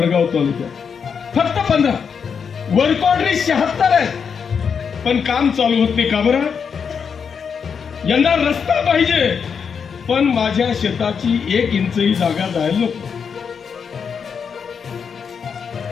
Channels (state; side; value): quieter; right; 6.5 dB